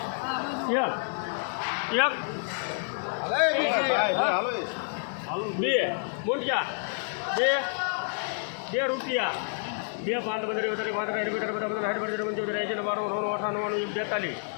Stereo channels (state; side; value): silent; right; 59 dB below the other